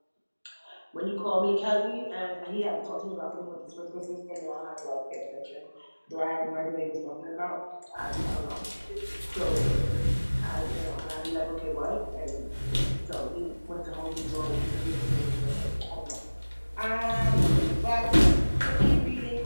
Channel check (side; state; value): both; inverted; correlation -1.00